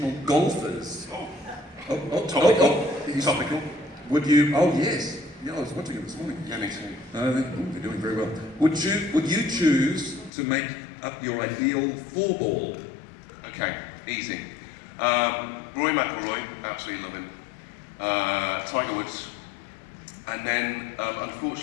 golfers. Topical. Topical. Would you? Oh yes. Yeah, I was watching it this morning. Yeah, me too. They're doing very well. Would you choose to make up your ideal four-ball? Okay, easy. Rory McIlroy, absolutely love him. Tiger Woods. And then,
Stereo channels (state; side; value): drops out; right; at 10.3 s